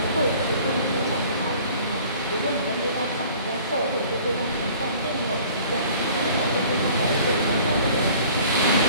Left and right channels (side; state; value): both; inverted; correlation -0.51